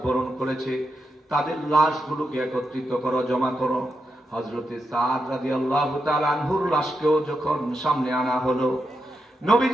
বরণ করেছে, তাদের লাশগুলোকে একত্রিত করো, জমা করো। হযরতে সাদ রাদিয়াল্লাহু তাআলা আনহুর লাশকেও যখন সামনে আনা হলো,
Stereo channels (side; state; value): both; normal; correlation 0.85